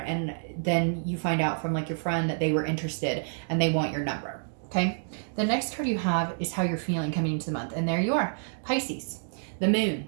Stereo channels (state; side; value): silent; left; digital silence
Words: and then you find out from like your friend that they were interested and they want your number. Okay. The next card you have is how you're feeling coming into the month. And there you are, Pisces. The moon,